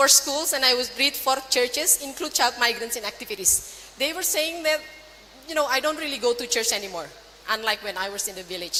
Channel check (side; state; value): both; identical; correlation 1.00